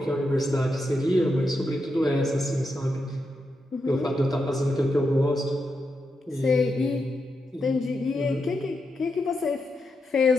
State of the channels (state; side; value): normal; both; correlation 0.85